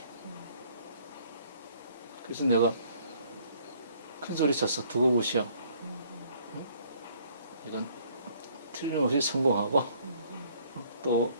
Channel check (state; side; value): inverted; both; correlation -0.61